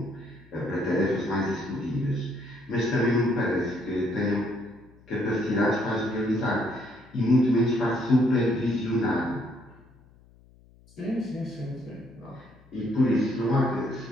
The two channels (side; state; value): left; noise; hum, 27 dB below the sound